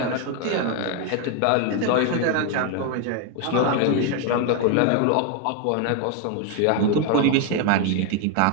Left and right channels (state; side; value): different; both; correlation 0.01